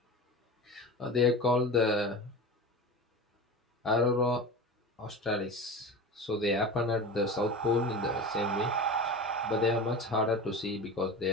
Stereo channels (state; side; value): normal; both; correlation 0.31